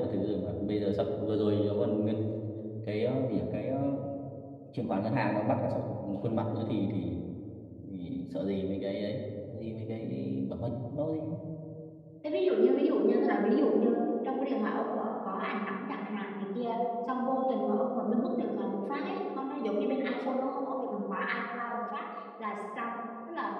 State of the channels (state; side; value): identical; both; correlation 1.00